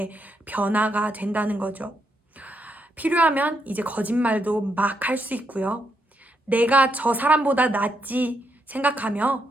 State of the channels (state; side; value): normal; both; correlation 0.79